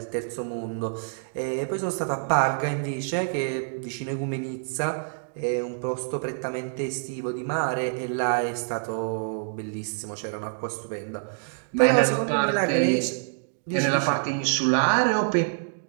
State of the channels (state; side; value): silent; left; digital silence